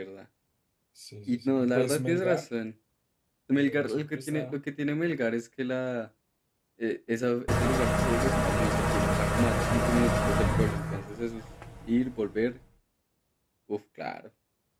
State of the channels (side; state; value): both; identical; correlation 1.00